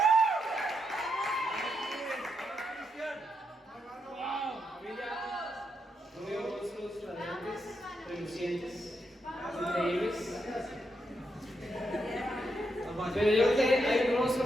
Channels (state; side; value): normal; both; correlation 0.81